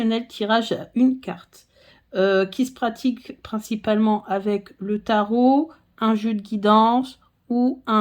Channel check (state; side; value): identical; both; correlation 1.00